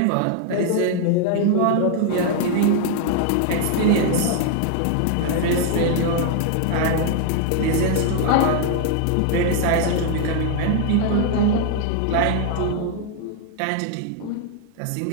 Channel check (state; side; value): different; both; correlation 0.00